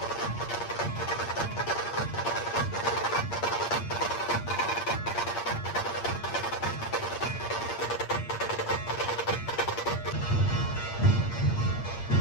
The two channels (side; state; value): right; late; 8.6 ms